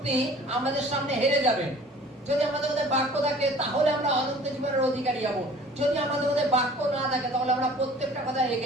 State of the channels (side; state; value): both; normal; correlation 0.48